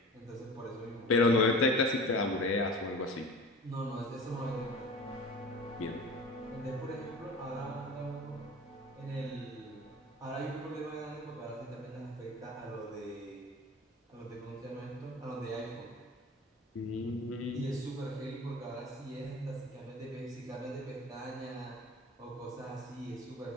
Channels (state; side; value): normal; both; correlation 0.37